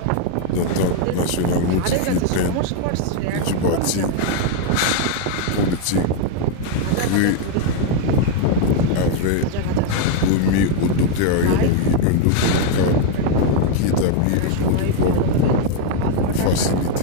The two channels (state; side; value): different; both; correlation 0.00